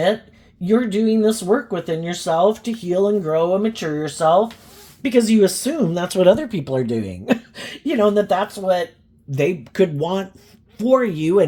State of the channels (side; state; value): both; identical; correlation 1.00